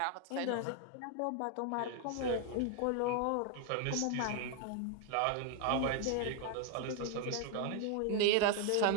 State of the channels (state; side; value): different; both; correlation 0.01